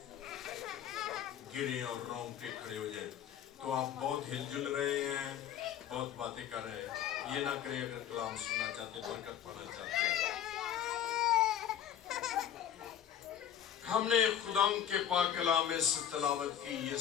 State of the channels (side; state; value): right; quieter; 10.0 dB